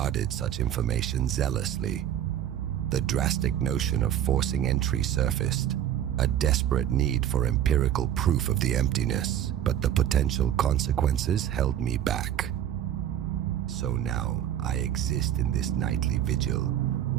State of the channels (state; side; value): quieter; left; 10.7 dB